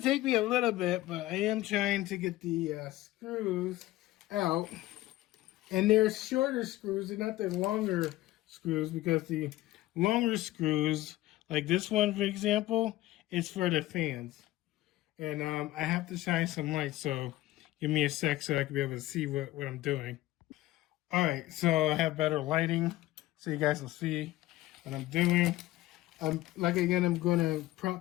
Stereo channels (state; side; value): quieter; right; 16.7 dB